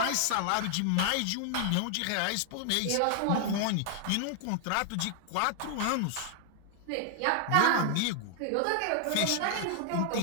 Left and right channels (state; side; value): different; both; correlation 0.00